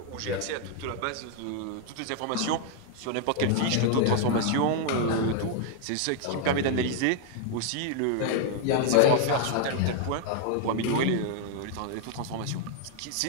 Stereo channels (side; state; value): both; different; correlation 0.00